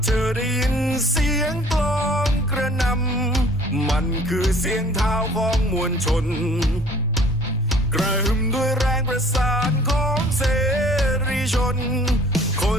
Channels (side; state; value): both; normal; correlation 0.53